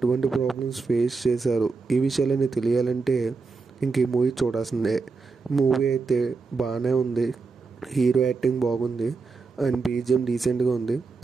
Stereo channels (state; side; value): quieter; left; 4.4 dB